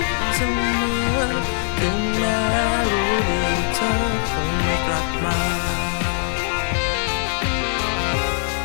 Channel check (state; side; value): silent; right; digital silence